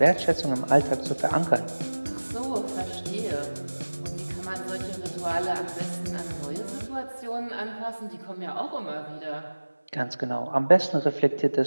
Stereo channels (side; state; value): both; inverted; correlation -1.00